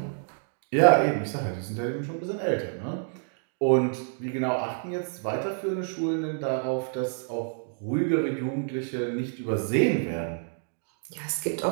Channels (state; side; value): silent; left; 59 dB below the other